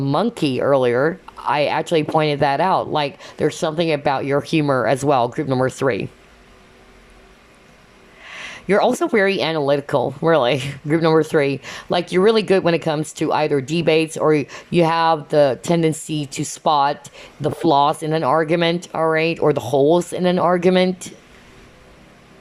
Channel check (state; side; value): identical; both; correlation 1.00